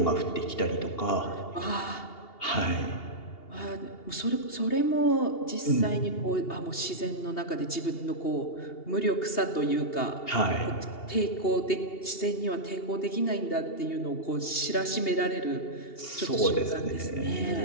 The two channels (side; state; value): right; late; 2.8 ms